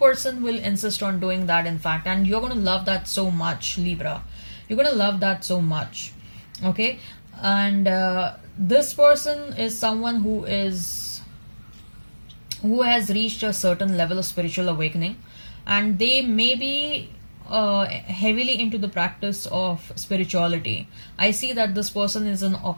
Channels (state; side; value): inverted; both; correlation -1.00